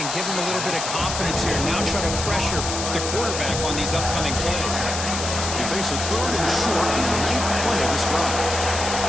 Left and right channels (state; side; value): noise; left; hiss, 4 dB below the sound